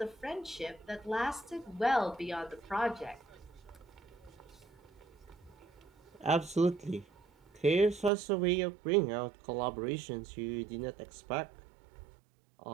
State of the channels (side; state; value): left; drops out; at 8.1 s